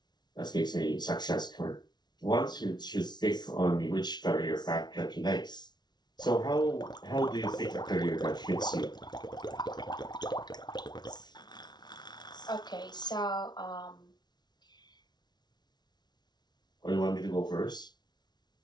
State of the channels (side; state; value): right; late; 0.20 ms